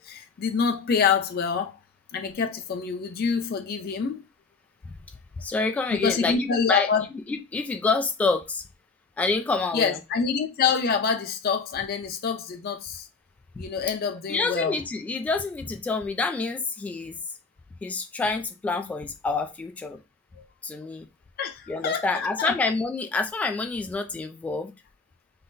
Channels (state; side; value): quieter; right; 4.6 dB